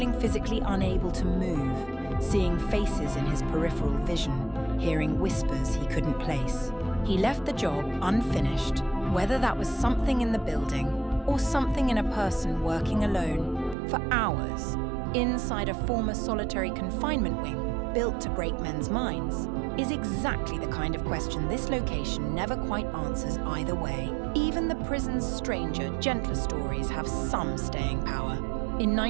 physically unable to move, seeing faces in his peripheral vision, hearing whispers he couldn't place. He left the job unfinished, whether that was something in the building or something in a person working alone, for hours, inside a former solitary confinement wing built to break men's minds. is exactly the kind of question this location never quite answers either way. Even the prison's stranger, gentler stories have some staying power. In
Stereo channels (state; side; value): drops out; left; at 13.8 s